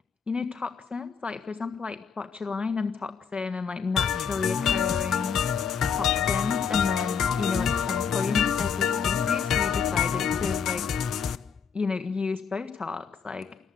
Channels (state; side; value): quieter; right; 6.6 dB